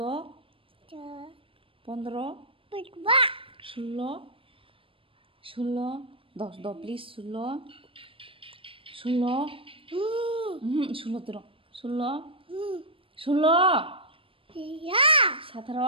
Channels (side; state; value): left; late; 0.26 ms